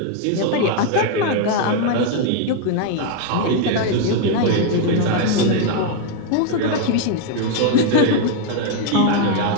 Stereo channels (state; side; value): different; both; correlation 0.00